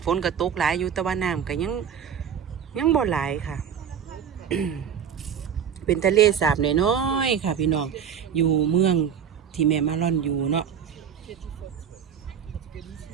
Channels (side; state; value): left; quieter; 8.1 dB